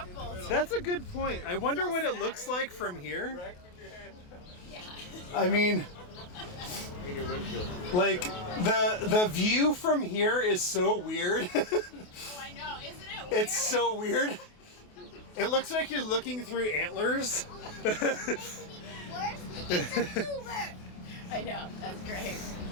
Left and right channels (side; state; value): right; late; 28 ms